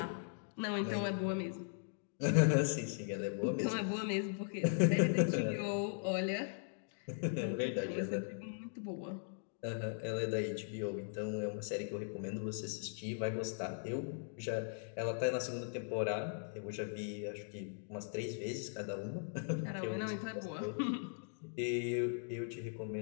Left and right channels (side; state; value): right; silent; digital silence